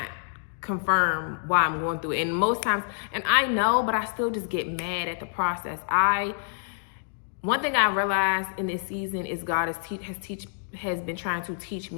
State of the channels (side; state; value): right; silent; digital silence